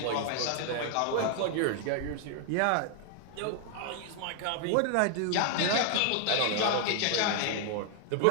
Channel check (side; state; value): both; different; correlation 0.00